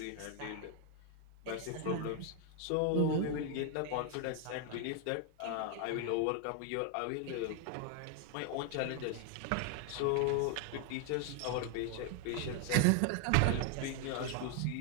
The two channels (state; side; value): different; both; correlation 0.00